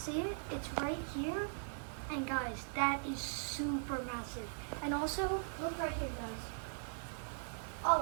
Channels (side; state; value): left; silent; digital silence